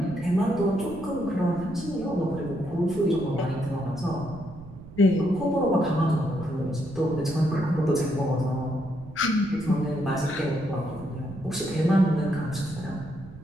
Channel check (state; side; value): noise; right; rumble, 16 dB below the sound